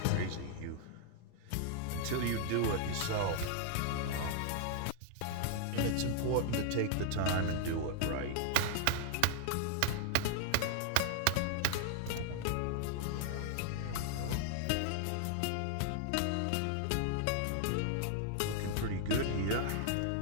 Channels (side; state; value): both; different; correlation 0.00